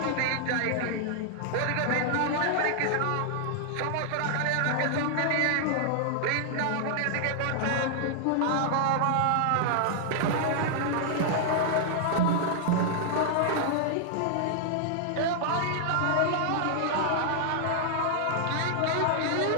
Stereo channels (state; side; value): different; both; correlation -0.01